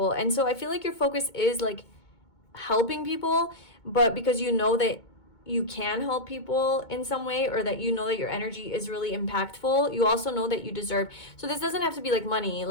And so I feel like your focus is like helping people, but because you know that you can help people in some way, or that that your energy is really impactful, you also know that you deserve. So this doesn't have to be like money.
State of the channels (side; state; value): right; late; 2.2 ms